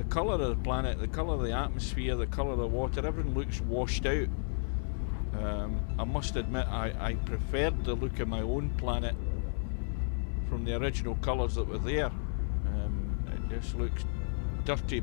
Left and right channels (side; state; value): right; silent; 56 dB below the other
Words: colour of the planet, the colour of the atmosphere, the colour of the water, everything looks washed out. I must admit I preferred the look of my own planet from the original colours that were there. It just looks dirty